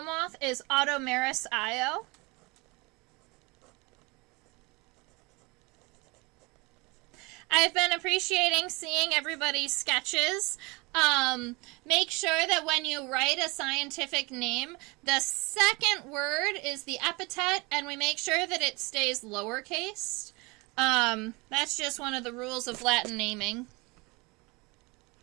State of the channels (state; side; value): quieter; left; 26.2 dB